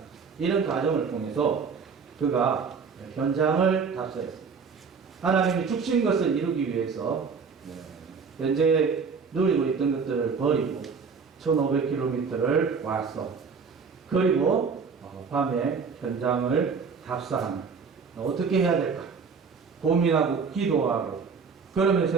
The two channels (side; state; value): left; quieter; 5.5 dB